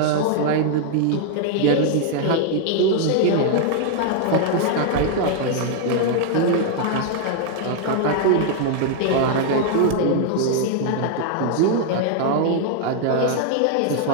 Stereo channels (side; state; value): both; different; correlation 0.00